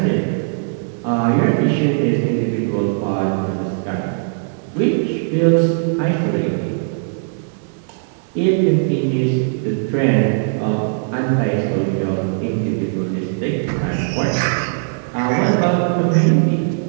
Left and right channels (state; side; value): silent; left; 57 dB below the other